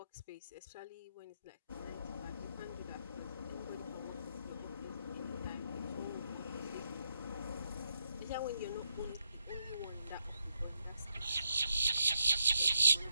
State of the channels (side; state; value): both; inverted; correlation -0.78